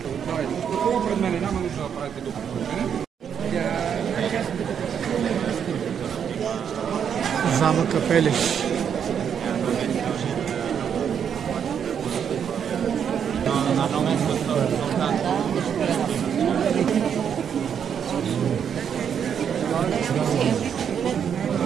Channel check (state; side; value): quieter; left; 8.0 dB